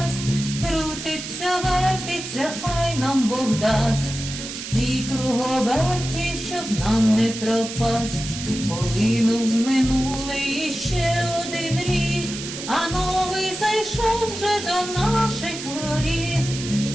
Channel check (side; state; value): right; noise; hiss, 8 dB below the sound